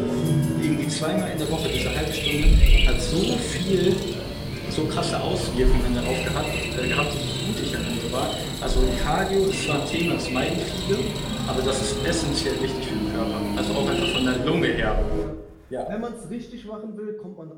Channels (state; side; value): identical; both; correlation 1.00